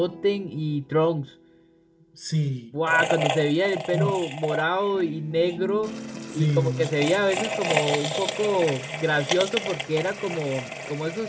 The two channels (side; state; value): both; identical; correlation 1.00